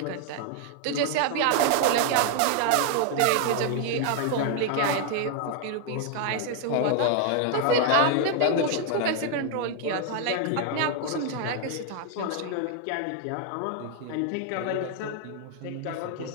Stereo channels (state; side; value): different; both; correlation 0.00